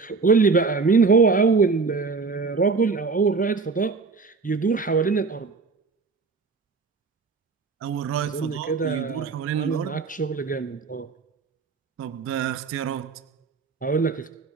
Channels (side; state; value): left; quieter; 4.6 dB